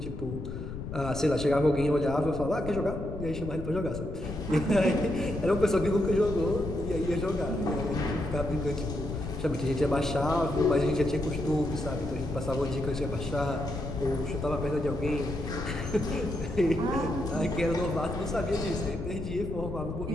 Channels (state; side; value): noise; left; rumble, 7 dB below the sound